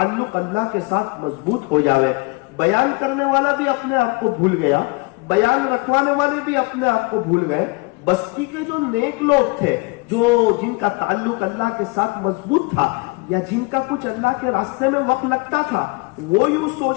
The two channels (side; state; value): right; quieter; 26.9 dB